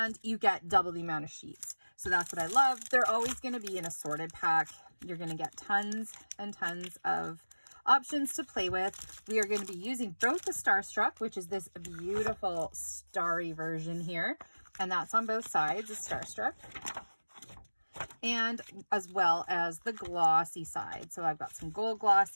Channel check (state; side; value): inverted; both; correlation -1.00